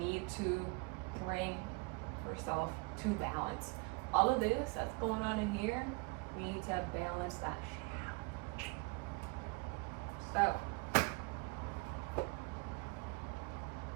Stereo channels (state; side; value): quieter; left; 28.3 dB